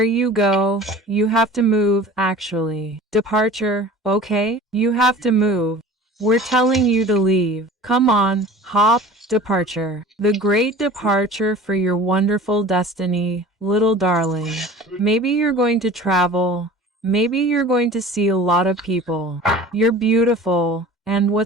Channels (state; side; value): normal; both; correlation 0.41